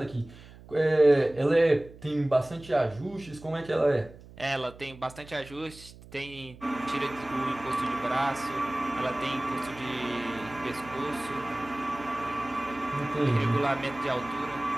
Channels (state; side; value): noise; right; hum, 19 dB below the sound